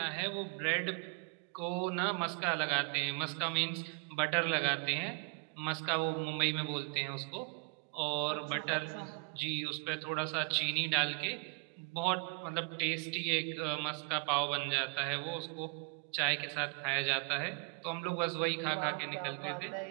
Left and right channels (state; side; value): quieter; left; 34.5 dB